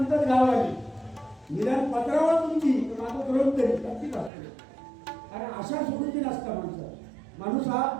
गावाने निदान पत्रावर तुमची माझं करून तरी नक्कीच असते. कारण आशा सोडून नसता माणूस हा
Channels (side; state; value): left; drops out; at 4.3 s